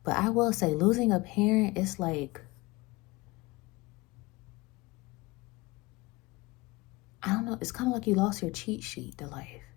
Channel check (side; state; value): right; quieter; 22.5 dB